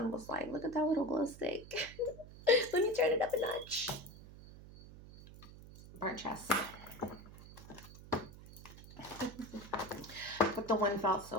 was like, look at that little glow stick. Let me turn it up a notch. Burnt chest. But the wind felt so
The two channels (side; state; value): right; noise; hum, 17 dB below the sound